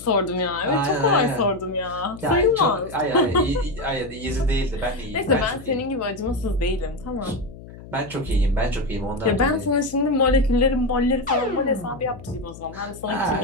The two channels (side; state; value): left; noise; hum, 16 dB below the sound